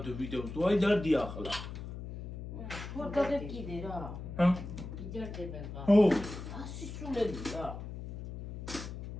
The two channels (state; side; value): noise; left; hum, 9 dB below the sound